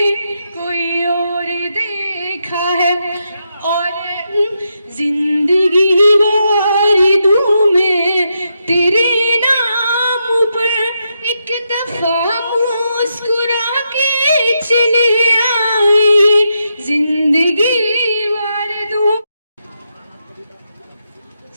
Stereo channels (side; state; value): both; inverted; correlation -0.83